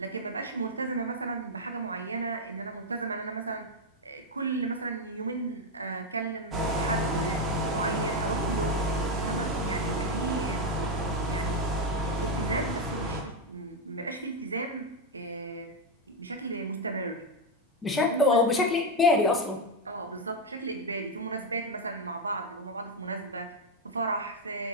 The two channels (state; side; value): normal; both; correlation 0.05